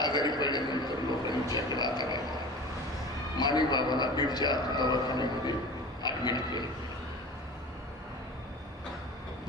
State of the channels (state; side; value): normal; both; correlation 0.36